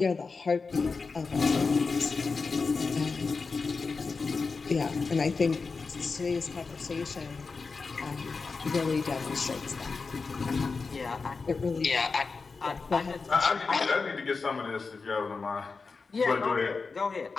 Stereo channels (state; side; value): quieter; right; 4.5 dB